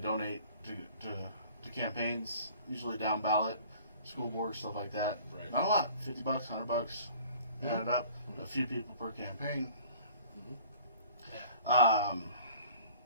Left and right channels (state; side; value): inverted; both; correlation -0.49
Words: to campaigns, usually down ballot, school board, stuff like that. Right. Not a lot, $50, $100. Add it up. A few people per campaign. I